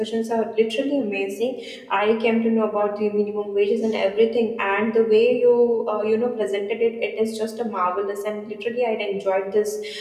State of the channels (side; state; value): both; identical; correlation 1.00